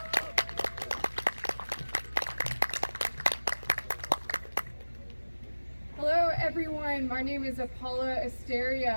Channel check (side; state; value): both; inverted; correlation -1.00